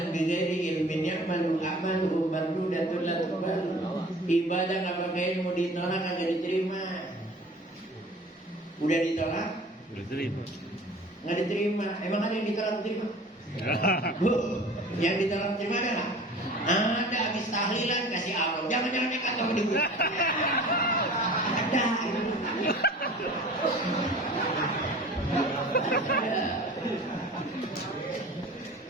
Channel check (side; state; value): both; normal; correlation 0.43